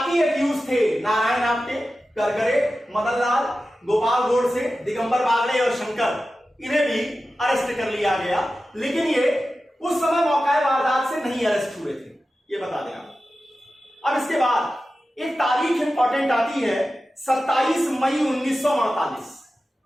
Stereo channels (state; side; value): normal; both; correlation 0.93